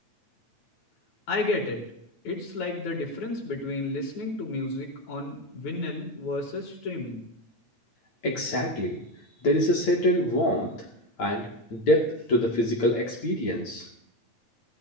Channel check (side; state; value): right; late; 8.9 ms